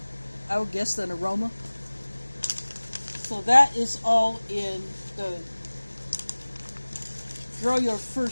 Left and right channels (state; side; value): inverted; both; correlation -1.00